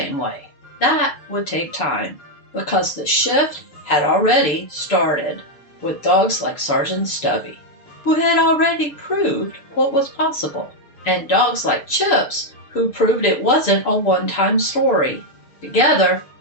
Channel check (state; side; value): late; right; 6.8 ms